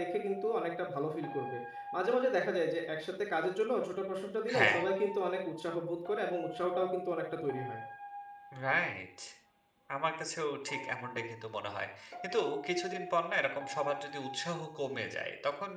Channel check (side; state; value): both; identical; correlation 1.00